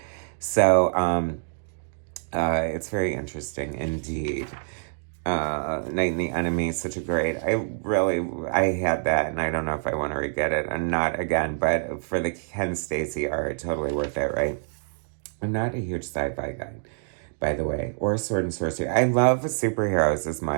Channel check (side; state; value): left; silent; digital silence